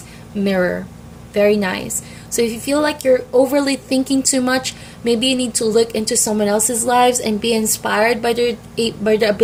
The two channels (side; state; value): both; identical; correlation 1.00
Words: mirror. Very nice. So if you feel like you're overly thinking too much, maybe you need to look into someone else's lives and be inspired by their